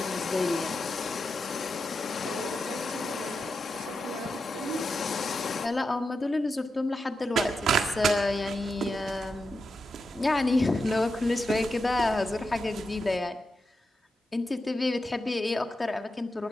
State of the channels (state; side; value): normal; both; correlation 0.88